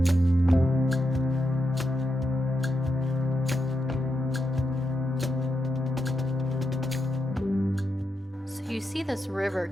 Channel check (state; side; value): normal; both; correlation 0.85